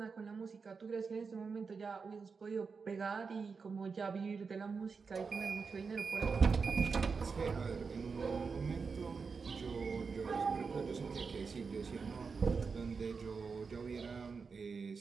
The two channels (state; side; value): quieter; left; 5.1 dB